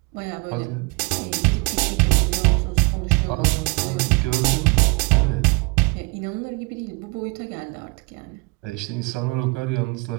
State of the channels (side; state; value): left; quieter; 27.7 dB